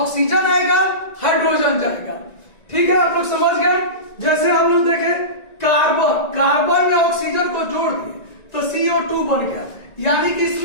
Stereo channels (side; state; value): right; late; 1.9 ms